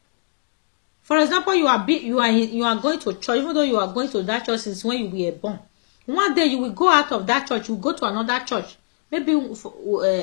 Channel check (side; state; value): right; silent; digital silence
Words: For example, you are going to church, even though you are going to that church since when you were born. One day you will go out of that church, you go to another church. Maybe